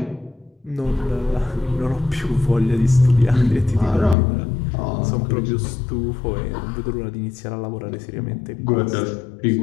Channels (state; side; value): drops out; right; at 4.2 s